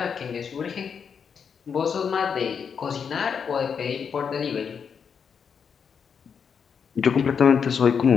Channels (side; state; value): right; quieter; 6.7 dB